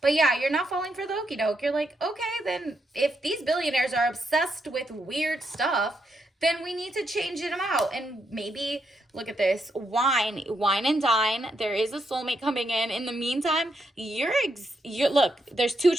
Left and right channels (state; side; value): normal; both; correlation 0.80